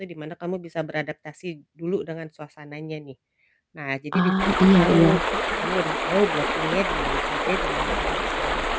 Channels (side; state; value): both; identical; correlation 1.00